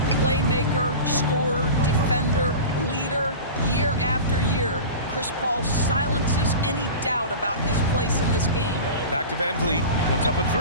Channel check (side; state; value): both; inverted; correlation -0.32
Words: Playmaker, scorer, defender, leader, year after year. Chris Paul silences any doubt about his place in this game. Back to Van Vliet. Puts up a